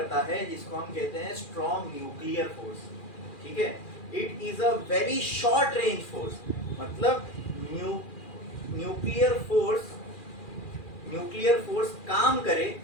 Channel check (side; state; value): right; late; 2.4 ms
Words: है जिसको हम कहते हैं स्ट्रॉन्ग न्यूक्लियर फोर्स। ठीक है, it is a very short range force, मतलब न्यूक्लियर फोर्स काम करे